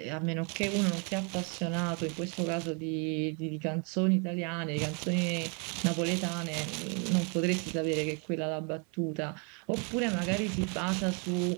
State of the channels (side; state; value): left; quieter; 36.2 dB